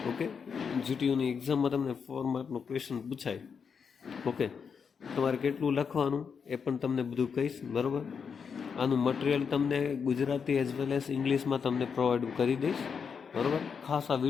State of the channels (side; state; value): right; quieter; 6.3 dB